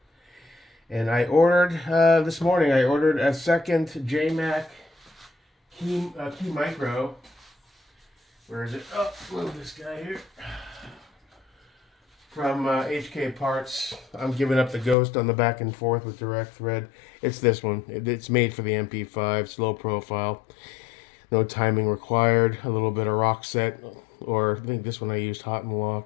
And I ordered, this morning, I ordered a second JMac Key Micro. Where is it? Oh, move this guy here. From HK Parts. I'm giving up the ghost on the back and forth with direct thread. It's this one. It's made for the MP5, slow profile. No timing required. A little bit of rock set. Or I think this one I used hot and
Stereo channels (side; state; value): right; drops out; at 15.0 s